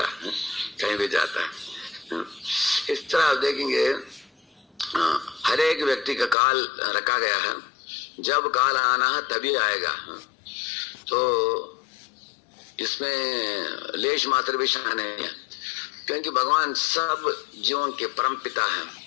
है, कहीं भी जाता है। इस तरह आप देखेंगे हर एक व्यक्ति का काल रखा गया है, जब काल आना है तभी आएगा। तो इसमें लेश मात्र भी शान नहीं है, क्योंकि भगवान सब जीवों के परम पिता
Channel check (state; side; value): drops out; right; at 6.4 s